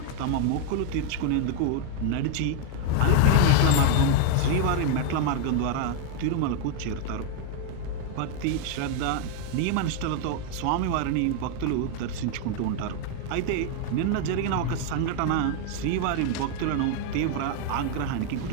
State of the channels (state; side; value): different; both; correlation 0.00